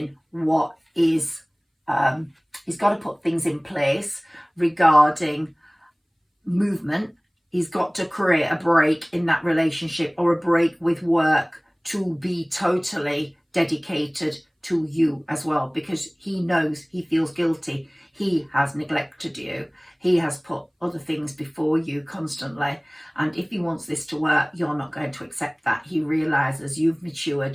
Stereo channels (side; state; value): both; identical; correlation 1.00